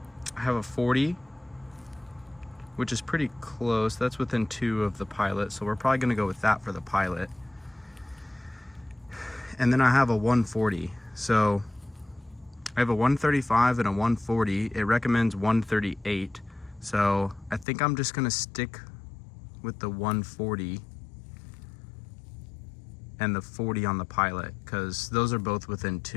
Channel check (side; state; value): right; drops out; at 17.7 s